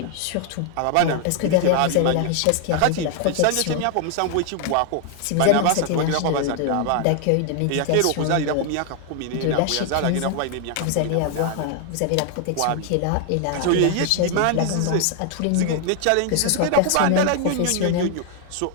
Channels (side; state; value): both; different; correlation 0.00